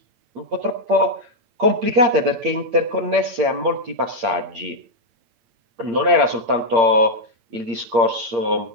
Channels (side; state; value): left; late; 8.8 ms